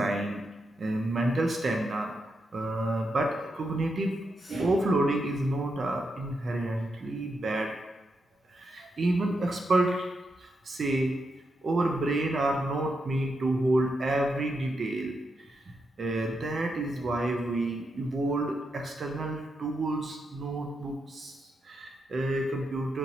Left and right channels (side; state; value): both; normal; correlation 0.84